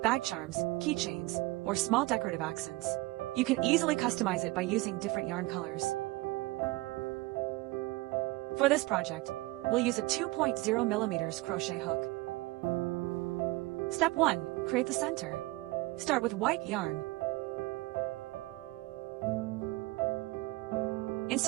bag charms, keychains, or small decorative accents. You can easily customize it by using different yarn colors. For this project, we'll use a 2.0mm crochet hook. Step 1. Create the center. Start with white yarn.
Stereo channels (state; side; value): quieter; left; 21.0 dB